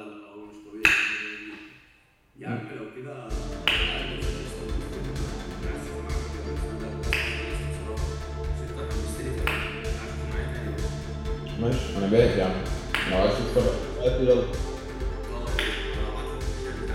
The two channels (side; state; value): both; identical; correlation 1.00